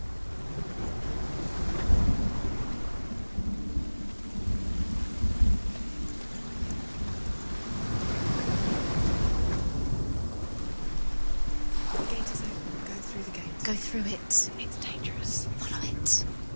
Go through it. It's dangerous. Follow it.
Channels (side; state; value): both; inverted; correlation -1.00